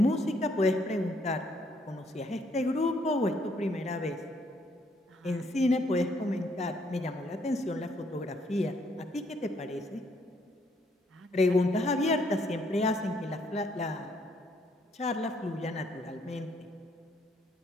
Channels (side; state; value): both; normal; correlation 0.69